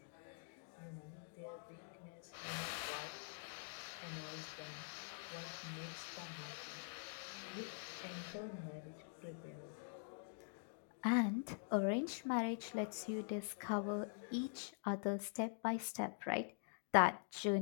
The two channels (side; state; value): right; silent; digital silence